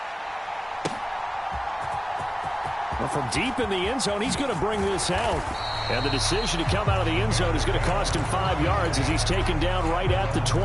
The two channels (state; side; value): identical; both; correlation 1.00